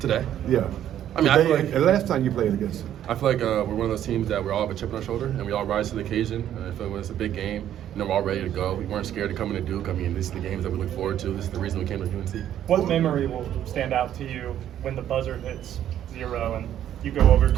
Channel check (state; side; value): quieter; left; 11.0 dB